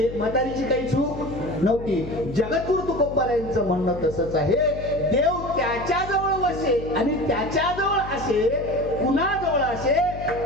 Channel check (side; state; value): left; noise; hum, 11 dB below the sound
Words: म्हातारीची काही चूक नव्हती. जगद्गुरु तुकोबाराय यांचं म्हणणं तसंच आहे, देव त्याच्याजवळ वसे आणि त्याच्याजवळ असे, कुणाजवळ असे